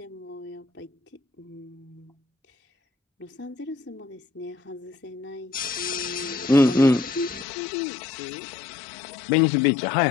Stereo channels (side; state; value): right; drops out; at 7.5 s